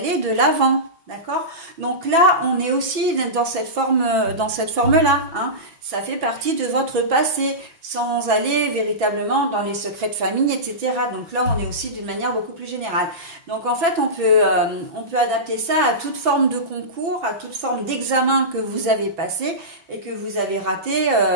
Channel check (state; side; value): late; left; 6.0 ms